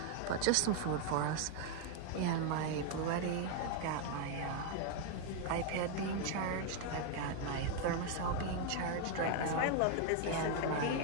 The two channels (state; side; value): different; both; correlation 0.01